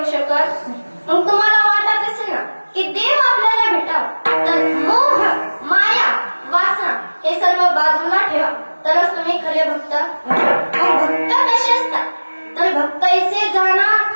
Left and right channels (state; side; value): inverted; both; correlation -1.00